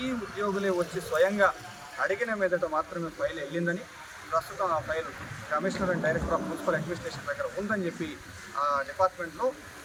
ఉద్యోగులే వచ్చి స్వయంగా అడిగిన మీదట మాత్రమే ఫైల్ వెళ్ళిందని, ప్రస్తుతం ఆ file commissioner and director of municipal administration దగ్గర ఉందని చెప్పి ఆ డిపార్ట్మెంట్లో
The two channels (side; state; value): both; identical; correlation 1.00